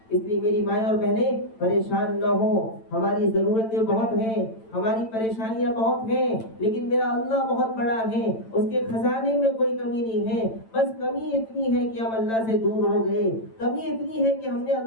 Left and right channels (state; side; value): late; right; 9.0 ms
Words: اس لیے میری مائیں اور بہنیں پریشان نہ ہو. ہماری ضرورتیں بہت ہیں, ہماری پریشانیاں بہت ہیں, لیکن میرا اللہ بہت بڑا ہے, اس کے خزانے میں کوئی کمی نہیں ہے. بس کمی اتنی ہے کہ ہم اللہ سے دور ہو گئے, کمی اتنی ہے کہ ہم نے